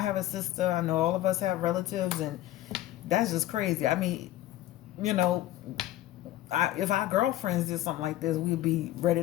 have a sister. I know all of us have relatives, and that's just crazy. I mean, you know, if our girlfriends did something like this, we'd be ready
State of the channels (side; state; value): right; quieter; 14.5 dB